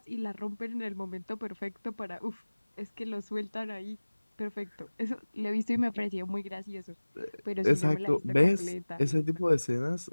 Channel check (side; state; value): both; inverted; correlation -1.00